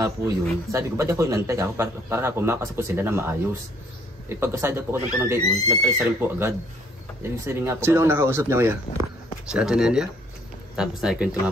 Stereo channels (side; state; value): both; normal; correlation 0.63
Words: po yun. Sabi ko, ba't ako inantay ako para po makasap po sila na maayos. Eh pagkasada po ko ng gayon, nag-alis rin po agad. Ibig sabihin nga po. Sino ang nakausap niya kuya? Si Ate Nelia? Tapos nakikwento nga